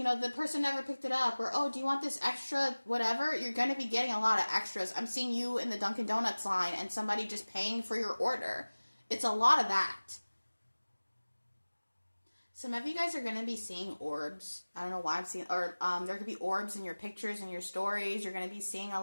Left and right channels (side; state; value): both; inverted; correlation -1.00